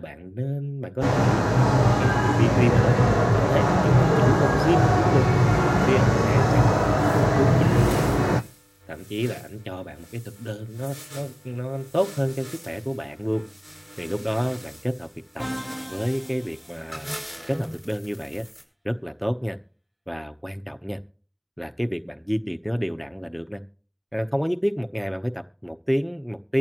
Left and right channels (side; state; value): both; identical; correlation 1.00